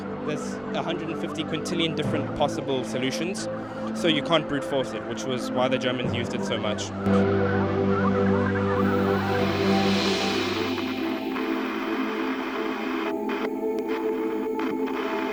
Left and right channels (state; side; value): noise; right; rumble, 26 dB below the sound